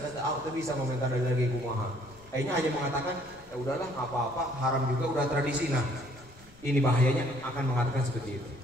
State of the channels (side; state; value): left; noise; rumble, 26 dB below the sound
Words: ada tuh bisa komentar dari lagi kumaha. Akhirnya hanya mengatakan ya udahlah nggak apa-apa, haram juga udah tradisi. Nah, ini bahayanya akan mengatakan seperti itu.